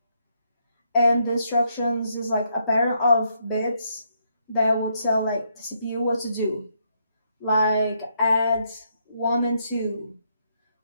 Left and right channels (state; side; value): inverted; both; correlation -0.76